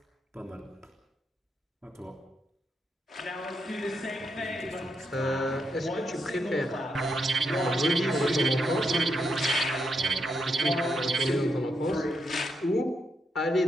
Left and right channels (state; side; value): normal; both; correlation 0.81